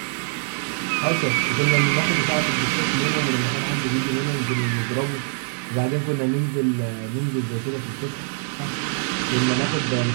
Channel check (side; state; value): left; silent; 58 dB below the other